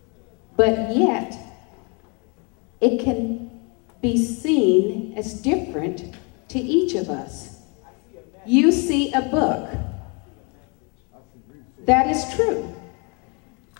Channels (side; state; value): right; quieter; 33.2 dB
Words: but yet it can be seen as different to each of us? You see a book. That is true.